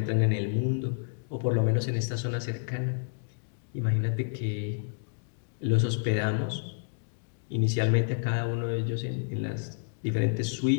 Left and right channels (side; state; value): right; silent; digital silence